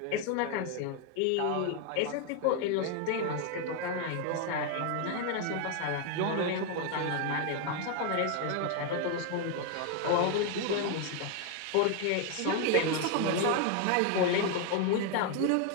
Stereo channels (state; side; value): different; both; correlation 0.01